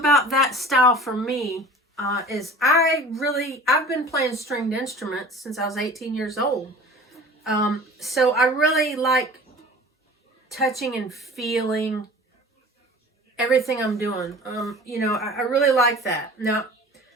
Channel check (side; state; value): both; normal; correlation 0.42